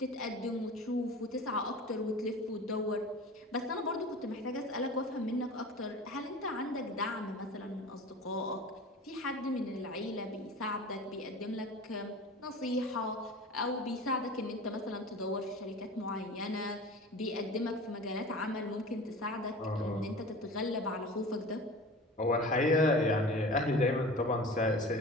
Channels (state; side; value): normal; both; correlation 0.37